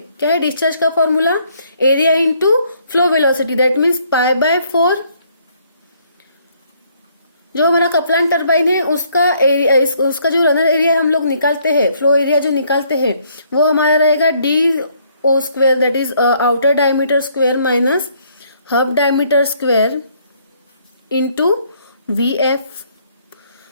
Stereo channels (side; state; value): both; inverted; correlation -0.67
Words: क्या है, डिस्चार्ज का formula area into flow velocity, that means π/4। जो हमारा कपलान टरबाइन है उसका एरिया, उसका जो रनर एरिया हम लोग निकालते हैं, फ्लो एरिया जो निकालते हैं, वो हमारा रहेगा DO², that is outer diameter square minus hub diameter square into VF.